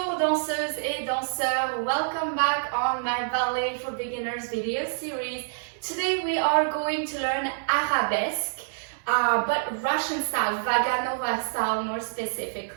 danseuses et danseurs, welcome back on my Ballet for Beginners video series. Today we are going to learn Arabesque, but Russian style, Vaganova style more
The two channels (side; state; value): left; silent; 60 dB below the other